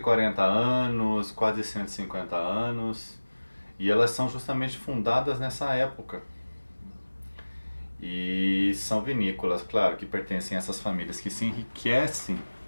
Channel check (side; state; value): both; inverted; correlation -1.00